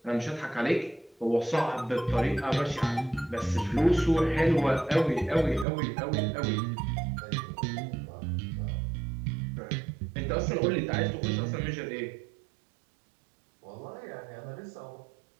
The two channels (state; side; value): drops out; left; at 5.7 s